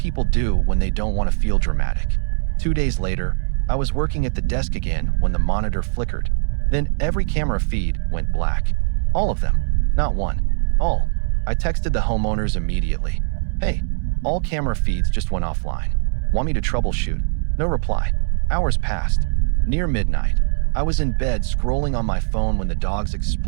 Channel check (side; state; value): left; silent; 65 dB below the other